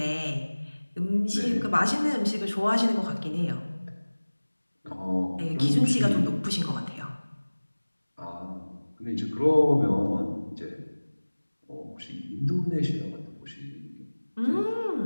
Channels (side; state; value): both; inverted; correlation -1.00